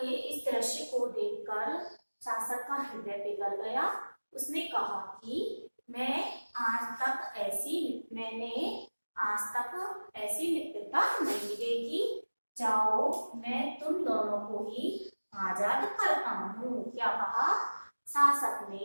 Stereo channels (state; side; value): inverted; both; correlation -1.00